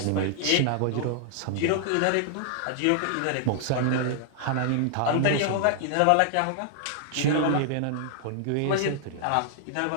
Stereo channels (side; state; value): both; different; correlation -0.01